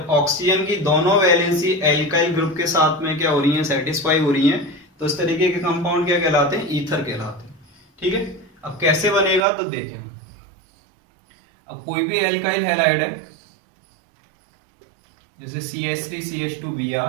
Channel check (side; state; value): left; drops out; at 9.5 s